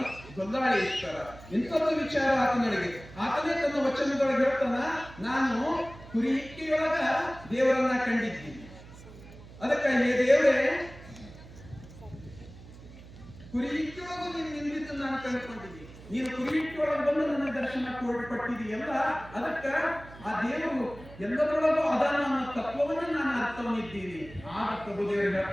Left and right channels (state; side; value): noise; right; hum, 18 dB below the sound